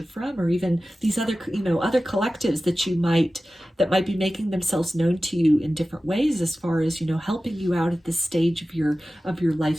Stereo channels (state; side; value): normal; both; correlation 0.95